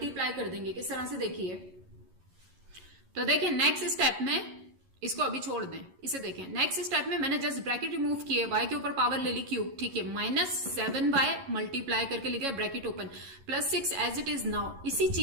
कर देंगे। किस तरह से, देखिए, तो देखिए नेक्स्ट स्टेप में इसको अभी छोड़ दें, इसे देखें। नेक्स्ट स्टेप में मैंने जस्ट ब्रैकेट रिमूव किए, y के ऊपर पावर ले ली क्यूब, ठीक है, माइनस 7y मल्टीप्लाई करके लिखा bracket open, plus 6 as it is. Now इसी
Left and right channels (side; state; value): left; late; 11 ms